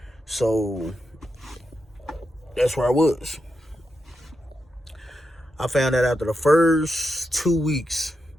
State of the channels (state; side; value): normal; both; correlation 0.86